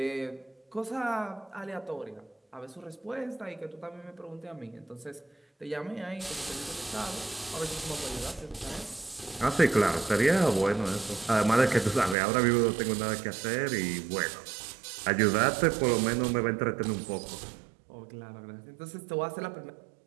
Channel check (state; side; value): drops out; left; at 12.2 s